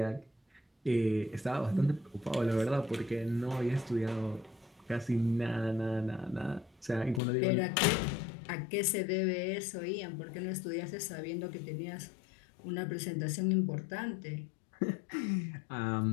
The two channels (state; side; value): drops out; right; at 7.2 s